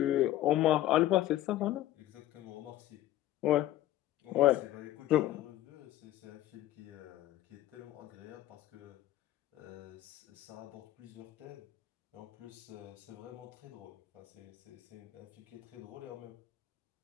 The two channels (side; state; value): right; quieter; 14.0 dB